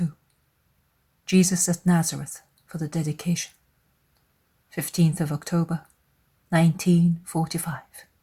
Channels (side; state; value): both; identical; correlation 1.00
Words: Jesus at Nazareth for the dedication. 15th of October, 1945.